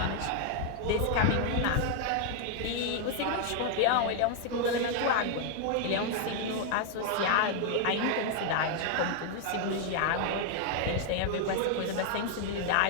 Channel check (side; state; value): both; different; correlation 0.00